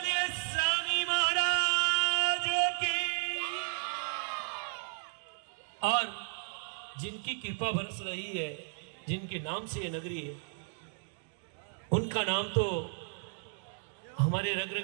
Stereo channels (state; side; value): silent; left; digital silence